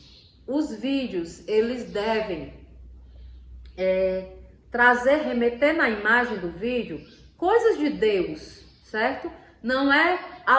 os vídeos, eles devem remeter na imagem do vídeo coisas de Deus, certo? Não é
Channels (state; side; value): identical; both; correlation 1.00